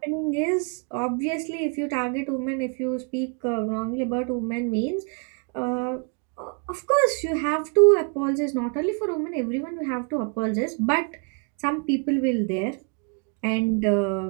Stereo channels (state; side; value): quieter; left; 38.0 dB